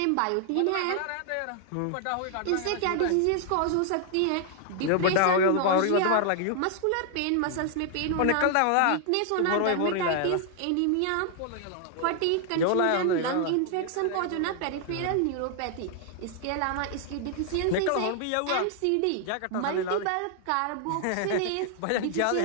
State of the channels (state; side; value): different; both; correlation 0.00